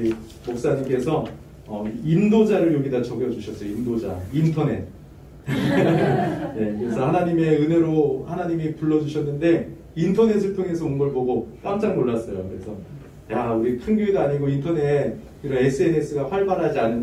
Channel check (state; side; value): identical; both; correlation 1.00